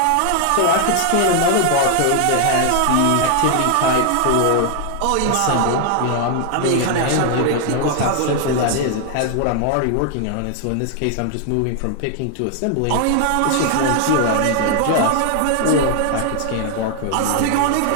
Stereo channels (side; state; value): both; different; correlation 0.00